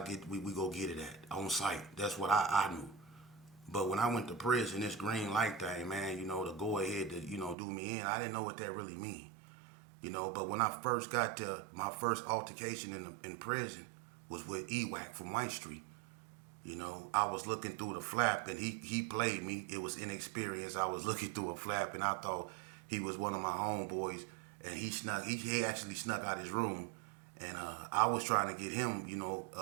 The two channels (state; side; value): drops out; left; at 7.6 s